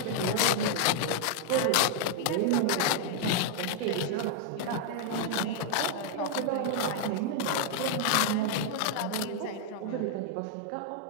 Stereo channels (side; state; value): both; different; correlation 0.00